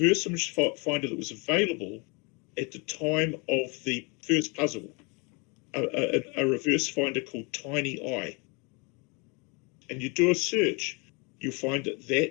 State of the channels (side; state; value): right; quieter; 30.9 dB